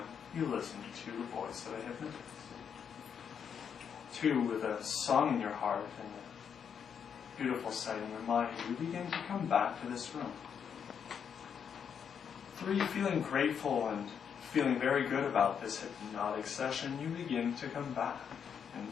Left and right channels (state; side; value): quieter; right; 7.5 dB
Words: you listen to the voice of a hypnotist. 2. With a song in your heart and a beautiful sight in your mind, you begin to come back to this room. 3. Feeling grateful and feeling very good about this hypnotic session, you begin to come back. And